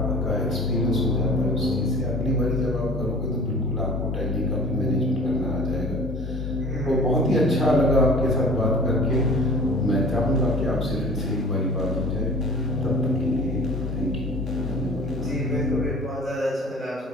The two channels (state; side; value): normal; both; correlation 0.43